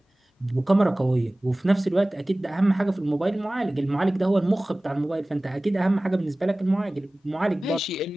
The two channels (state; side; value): normal; both; correlation 0.98